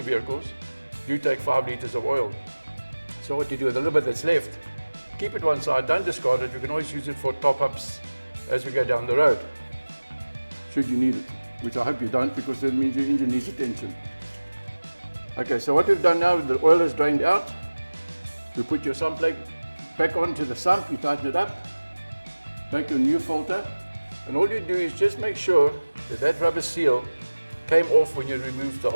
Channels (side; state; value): both; inverted; correlation -1.00